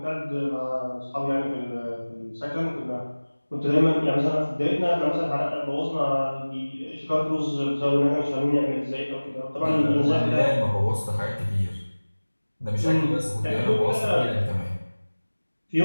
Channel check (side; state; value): both; inverted; correlation -1.00